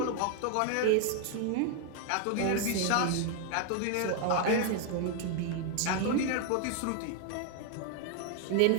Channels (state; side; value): different; both; correlation 0.01